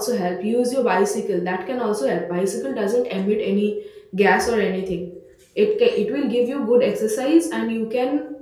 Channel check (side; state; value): both; identical; correlation 1.00